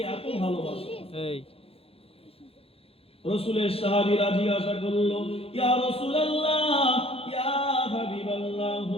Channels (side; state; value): right; late; 0.28 ms